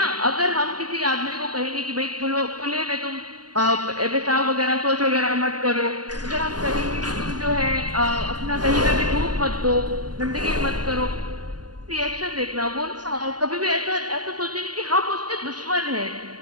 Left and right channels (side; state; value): left; late; 0.69 ms